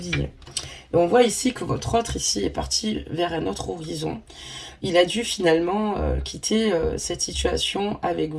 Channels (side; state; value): both; identical; correlation 1.00